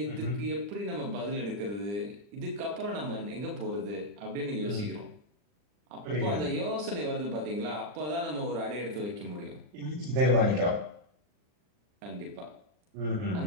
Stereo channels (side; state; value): left; late; 40 ms